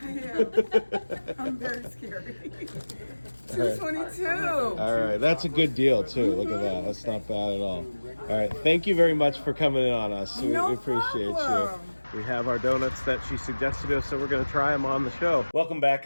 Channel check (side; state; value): both; inverted; correlation -1.00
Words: am. I'm very scary. 222. All right, that's a good deal too. Look at that. That's not bad at all. All right, thank you very much for coming in on us. We No appreciate problem. you. We have our donuts that she suggested to us, so we're going to try them on the show. Welcome back